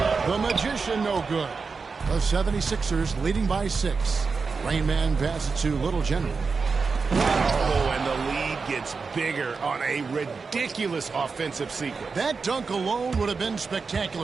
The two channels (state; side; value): quieter; left; 4.8 dB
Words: The Magician, no good. The 76ers leading by 6. Rain Man passes to Little General. Oh, and the lead gets bigger on a ridiculous offensive sequence. That dunk alone would have been